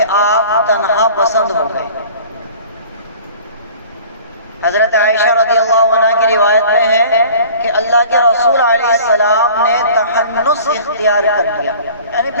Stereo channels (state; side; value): inverted; both; correlation -0.46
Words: آپ تنہا پسند ہو گئے۔ حضرت عائشہ رضی اللہ عنہ کی روایت میں ہے کہ اللہ کے رسول علیہ السلام نے تحنس اختیار کر لیا، یعنی